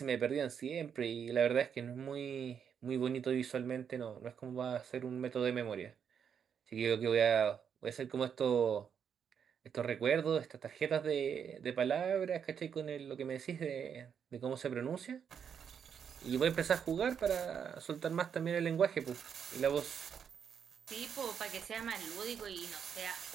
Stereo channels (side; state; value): left; quieter; 7.6 dB